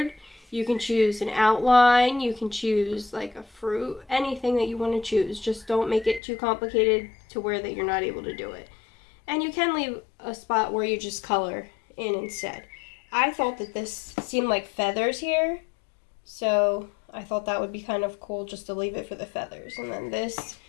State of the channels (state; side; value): drops out; right; at 6.2 s